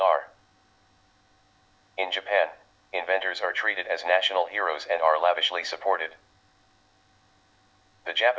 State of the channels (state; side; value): identical; both; correlation 1.00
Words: In Japan, inventors are treated as national heroes and are lavishly supported. The